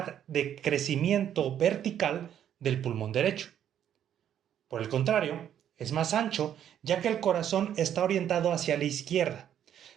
de crecimiento vertical del pulmón derecho. Por el contrario, es más ancho ya que el corazón está orientado hacia la izquierda,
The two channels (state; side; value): quieter; left; 10.0 dB